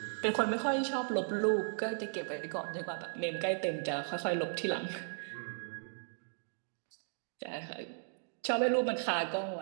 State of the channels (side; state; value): left; silent; digital silence